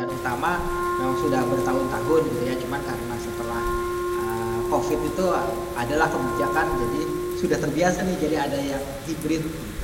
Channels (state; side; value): identical; both; correlation 1.00